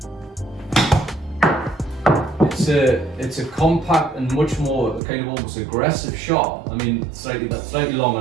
It's a compact and much more kind of almost aggressive shot. I mean, slightly long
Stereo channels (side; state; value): left; drops out; at 5.0 s